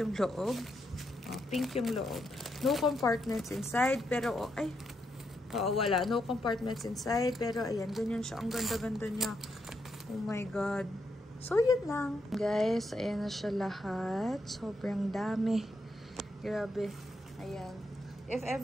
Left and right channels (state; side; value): normal; both; correlation 0.80